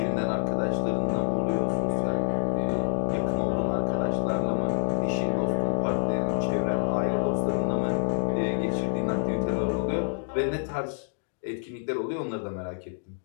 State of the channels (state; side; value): silent; right; digital silence